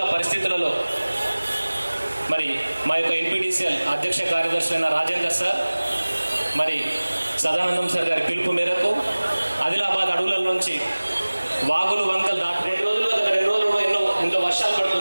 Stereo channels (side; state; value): both; inverted; correlation -1.00